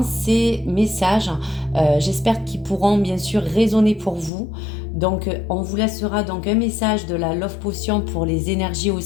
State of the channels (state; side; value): drops out; right; at 4.3 s